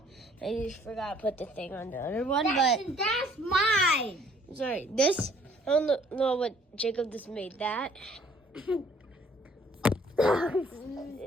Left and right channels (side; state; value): both; normal; correlation 0.59